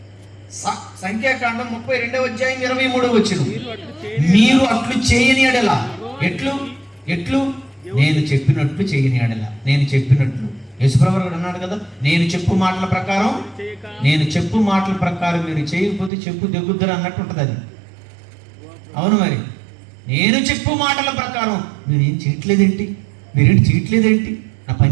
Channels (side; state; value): left; drops out; at 16.1 s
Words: సంఖ్యాకాండం 32వ అధ్యాయం 23వ వచనం. మీరు అట్లు చేయని ఎడల. ఎట్లు? నేను చెప్పినట్లు చేయని ఎడల. నేను చెప్పినట్లు యేసుప్రభువు కూడా అన్నాడు కదా, నేను చెప్పు మాటల ప్రకారం మీరు చేయకపోతే చెప్పు దెగ్గుద్దరు అన్నట్టు ఉంటుంది అది. అవును, మరి నేను చెప్పు మాటల ప్రకారం మీరేం చేయట్లేదేంటి? నా